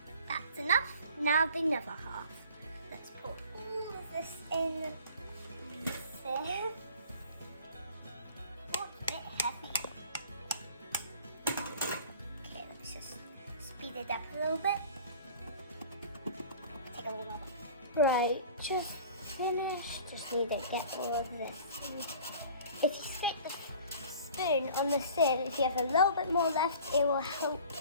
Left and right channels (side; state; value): both; inverted; correlation -0.46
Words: That's enough, now the other half. Let's put all of this in there. Oh, it's a bit heavy. Okay, let's just speed it up a little bit. Take a little more. Right, just finished. Just need to get all of this. If you stick the spoon on the sieve, if you have a little bit more left, it will help